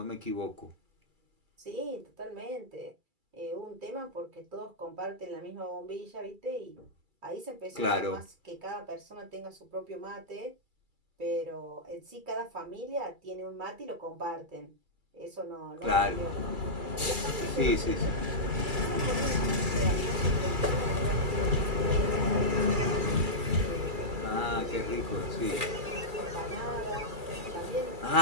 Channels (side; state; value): left; late; 2.3 ms